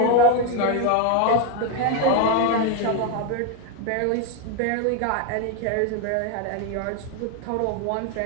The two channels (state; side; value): different; both; correlation 0.01